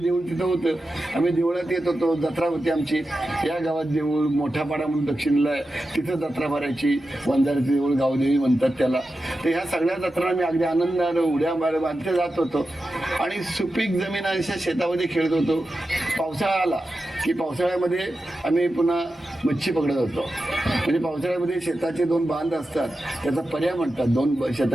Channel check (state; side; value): normal; both; correlation 0.91